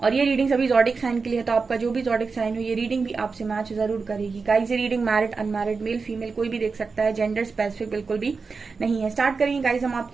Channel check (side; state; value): left; quieter; 4.7 dB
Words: ये रीडिंग सभी जॉडिक साइन के लिए है, तो आपका जो भी जॉडिक साइन हो ये रीडिंग भी आपसे मैच जरूर करेगी। गाइस, ये reading married unmarried male female कोई भी देख सकता है, जेंडर स्पेसिफिक बिल्कुल भी नहीं है। स्टार्ट करेंगे गाइस, हम